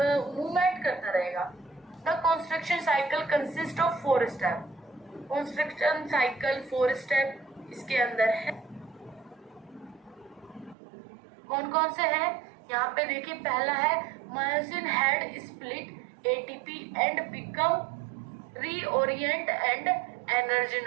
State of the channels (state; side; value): drops out; left; at 10.8 s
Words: मूवमेंट करता रहेगा। The construction cycle consist of 4 step, construction cycle 4 step इसके अंदर है। कौन कौन से हैं, यहाँ पे देखिए, पहला है myosin head split ATP and become reorient and